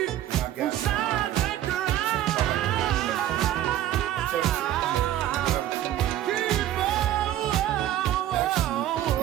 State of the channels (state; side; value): quieter; left; 12.5 dB